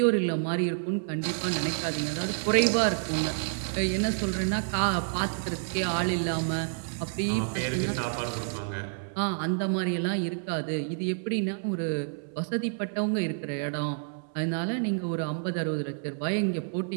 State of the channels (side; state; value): left; silent; 59 dB below the other